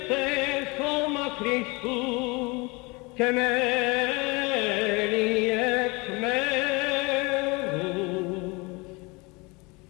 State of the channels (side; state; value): right; quieter; 26.6 dB